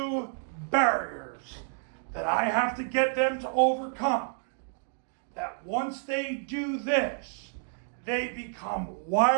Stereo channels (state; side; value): silent; left; digital silence